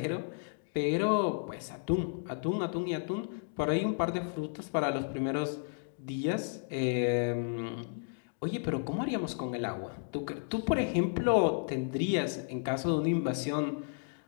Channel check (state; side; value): silent; right; digital silence